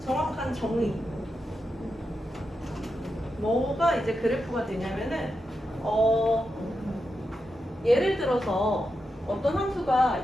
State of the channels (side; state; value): both; normal; correlation 0.87